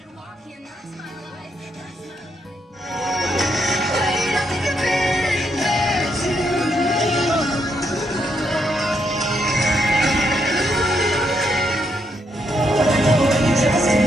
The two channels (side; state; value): both; normal; correlation 0.77